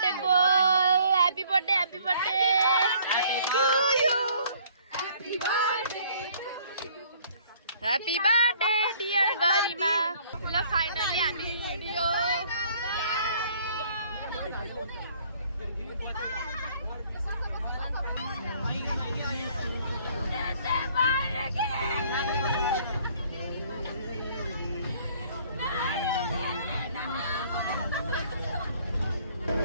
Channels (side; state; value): both; inverted; correlation -0.59